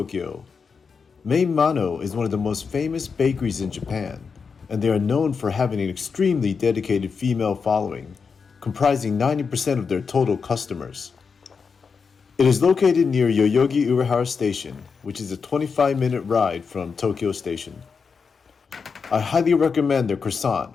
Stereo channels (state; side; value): quieter; right; 5.5 dB